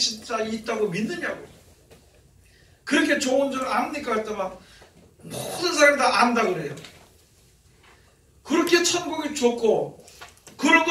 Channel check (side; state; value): both; identical; correlation 1.00